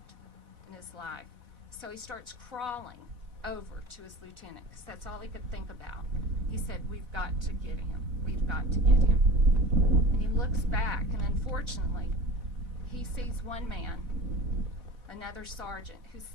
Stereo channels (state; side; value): late; left; 4.1 ms